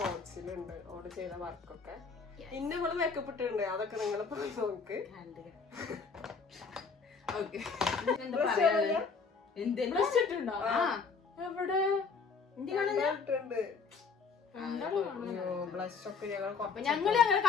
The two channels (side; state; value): right; quieter; 5.1 dB